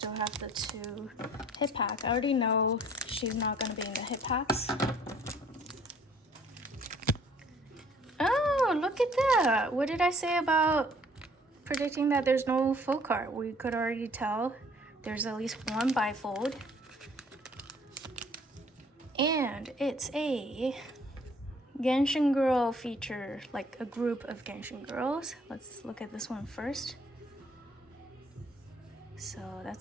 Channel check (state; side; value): normal; both; correlation 0.58